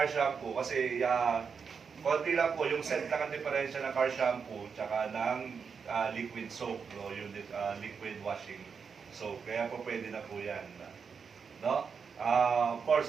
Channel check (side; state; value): left; quieter; 6.0 dB